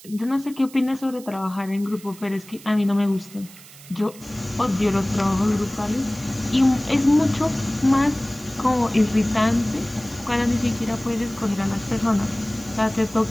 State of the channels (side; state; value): right; noise; hiss, 20 dB below the sound